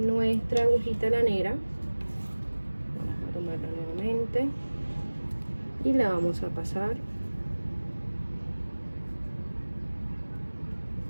agujita lanera, vamos a tomarla nuevamente y la vamos a pasar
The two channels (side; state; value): both; inverted; correlation -1.00